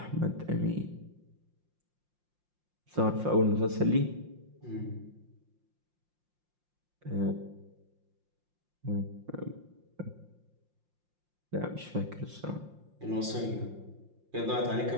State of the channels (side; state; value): left; late; 5.7 ms